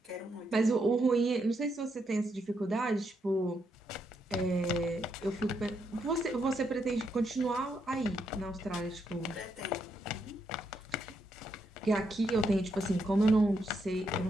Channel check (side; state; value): both; normal; correlation 0.79